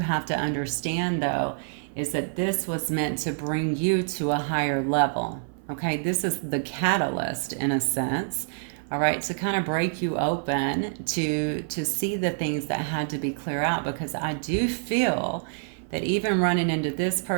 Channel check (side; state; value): left; silent; 55 dB below the other